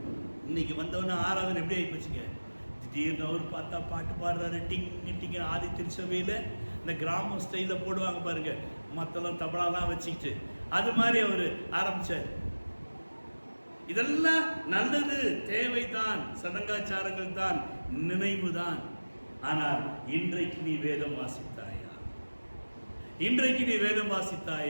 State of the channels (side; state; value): both; inverted; correlation -1.00